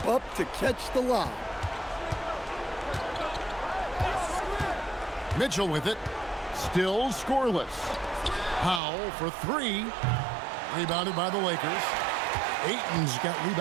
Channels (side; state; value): left; drops out; at 8.8 s